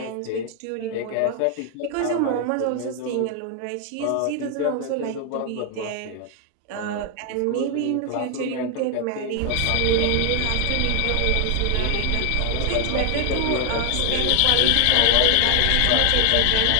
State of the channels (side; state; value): both; different; correlation 0.00